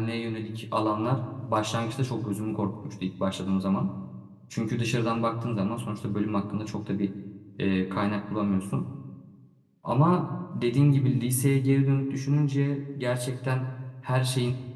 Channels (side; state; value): both; identical; correlation 1.00